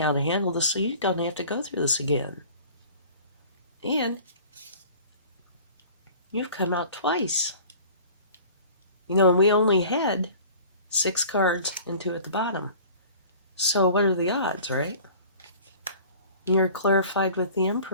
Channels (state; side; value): inverted; both; correlation -0.45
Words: to handle this so you don't have to go through this again. And you've come out twice. And we only had 6 cards and 2 at the bottom. So what are the odds, right? You're clarified with the